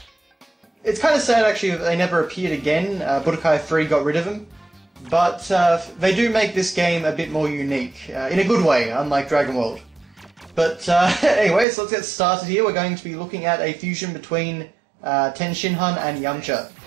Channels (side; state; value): left; drops out; at 11.7 s